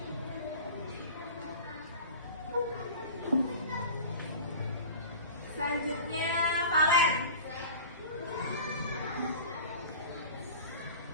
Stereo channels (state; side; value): inverted; both; correlation -0.38